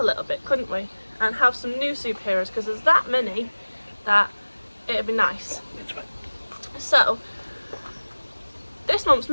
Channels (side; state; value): both; inverted; correlation -1.00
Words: little bit, couldn't we, and have some new superheroes, because there's that many that it'd be nice. So this month's